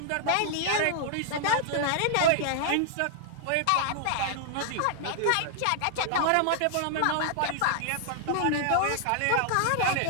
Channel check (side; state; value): both; different; correlation -0.01